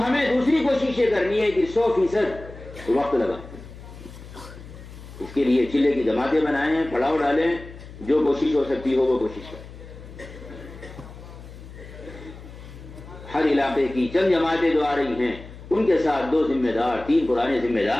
ہمیں دوسری کوشش یہ کرنی ہے کہ 100% وقت لگا. اس کے لیے چلے کی جماعتیں بنائیں, پڑاؤ ڈالیں, جو کوشش ہو سکتی ہو وہ کوشش کریں. ہر علاقے کی چند جماعتیں جو آ رہی ہیں ان کے ساتھ 2 ذمہ دار, 3 پرانے ذمہ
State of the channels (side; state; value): left; noise; hum, 16 dB below the sound